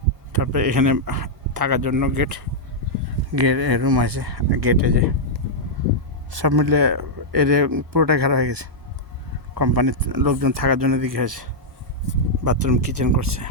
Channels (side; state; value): both; normal; correlation -0.05